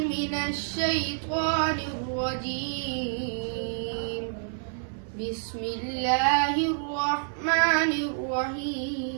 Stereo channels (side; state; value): left; silent; 59 dB below the other